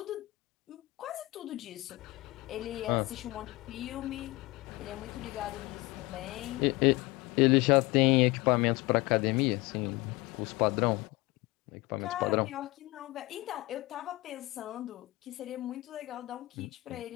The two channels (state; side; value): quieter; right; 21.4 dB